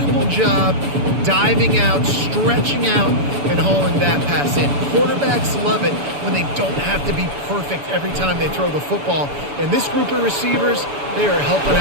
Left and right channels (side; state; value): left; late; 7.0 ms